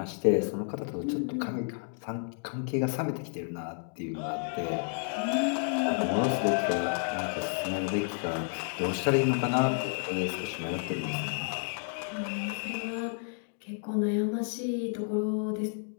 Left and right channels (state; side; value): silent; right; 57 dB below the other